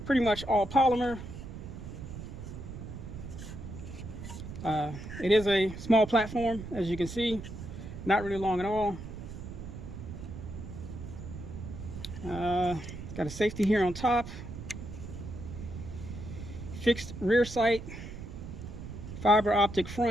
Pretty much all polymer. It is a small platform, as you can see, not really long at all. Got a safety here on top, fixed rear sight, fiber optic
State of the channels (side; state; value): right; noise; rumble, 10 dB below the sound